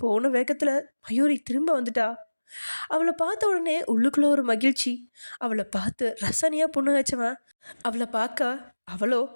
போன வேகத்தில் மயூரி திரும்ப வந்துட்டா. அவளை பார்த்த உடனே உள்ளுக்குள்ள ஒரு மகிழ்ச்சி. அவளை பார்த்து ரசனையாக புண்ணு வச்சவன் அவளை பார்க்க அவளோ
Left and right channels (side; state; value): both; inverted; correlation -1.00